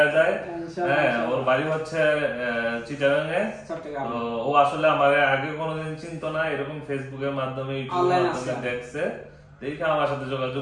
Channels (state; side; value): identical; both; correlation 1.00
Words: যায়। হ্যাঁ, ওর বাড়ি হচ্ছে চিটাগাঙে। তো ও আসলে আমার আগে কোনোদিন চিনতো না, এরকম ফেসবুকের মাধ্যমে, ইউটিউবের মাধ্যমে দেখছে, দেখে আমার সাথে